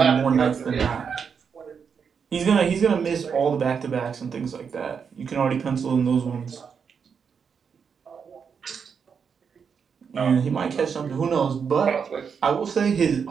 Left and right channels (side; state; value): left; quieter; 6.5 dB